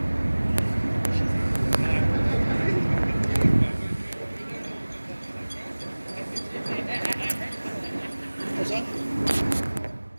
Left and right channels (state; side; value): inverted; both; correlation -1.00